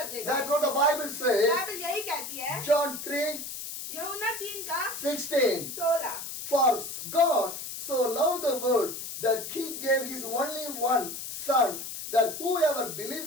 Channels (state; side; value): noise; left; hiss, 8 dB below the sound